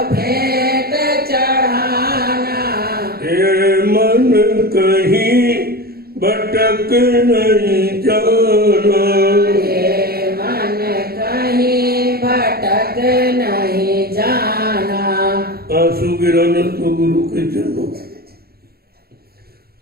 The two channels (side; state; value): left; late; 0.45 ms